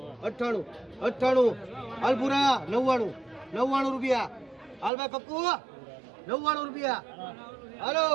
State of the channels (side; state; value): left; drops out; at 4.9 s